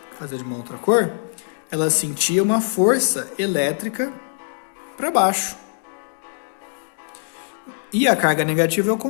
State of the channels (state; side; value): silent; right; digital silence